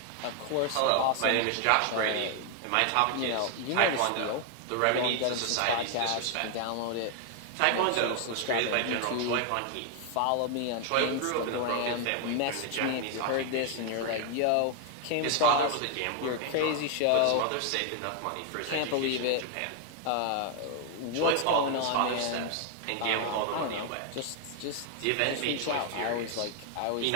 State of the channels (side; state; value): both; different; correlation 0.00